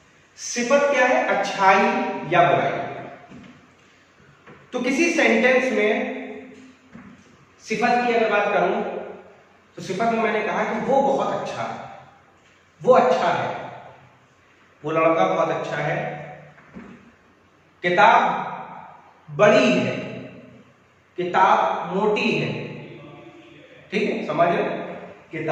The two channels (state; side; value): identical; both; correlation 1.00